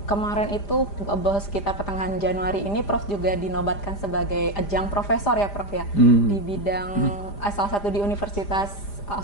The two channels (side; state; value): right; late; 5.0 ms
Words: kemarin itu sekitar pertengahan Januari ini Prof juga dinobatkan sebagai adjunct profesor ya, Prof, ya, di bidang salah satu di Universitas